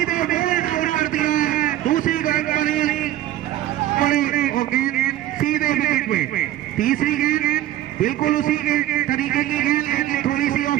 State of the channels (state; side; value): quieter; left; 13.3 dB